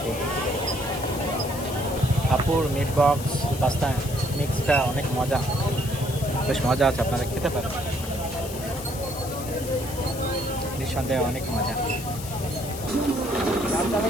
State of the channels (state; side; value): noise; left; hiss, 12 dB below the sound